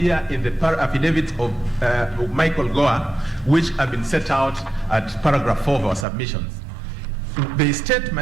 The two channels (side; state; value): left; drops out; at 6.1 s